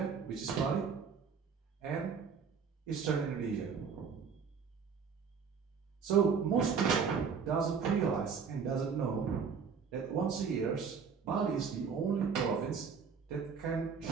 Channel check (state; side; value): quieter; left; 6.1 dB